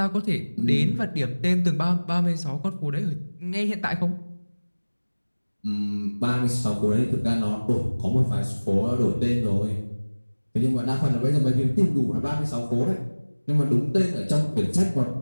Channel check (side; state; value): both; inverted; correlation -1.00